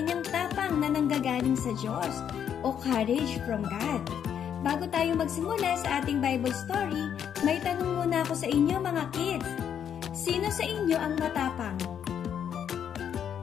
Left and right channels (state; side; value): quieter; right; 8.7 dB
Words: tapang na nanggagaling sa Diyos o courage from God. Bago tayo magsimula sa ating Bible story, may tanong muna ako sa inyo mga kids. Sino sa inyo ang matapang?